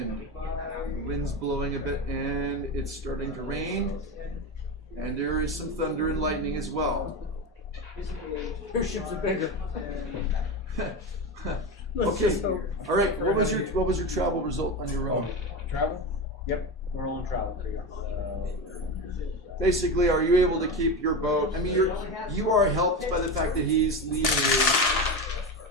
the wind's blowing a bit, and it's starting to rain, and there is some thunder and lightning as well. Your ships are bigger. Okay. All right. What was your travel result on your own? Travel? Yep, we're on travel for you. Basically, are you able to keep your boat? I mean, you are helped by the fact that he's leading you.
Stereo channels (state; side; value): normal; both; correlation 0.20